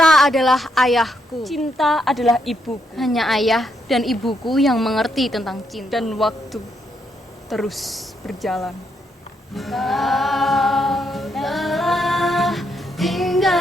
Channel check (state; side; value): normal; both; correlation 0.77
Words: adalah ayahku. Cinta adalah ibuku. Hanya ayah dan ibuku yang mengerti tentang cinta. Dan waktu terus berjalan. Kau telah